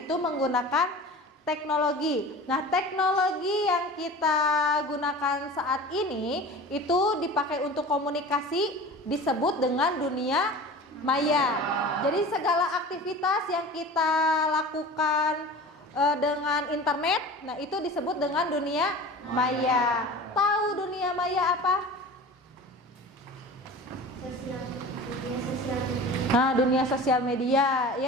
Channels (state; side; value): normal; both; correlation 0.37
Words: menggunakan teknologi. Nah, teknologi yang kita gunakan saat ini itu dipakai untuk komunikasi disebut dengan dunia maya. Jadi segala aktivitas yang kita lakukan dengan internet, nah itu disebut dengan dunia maya. Tahu dunia maya apa? Dunia sosial media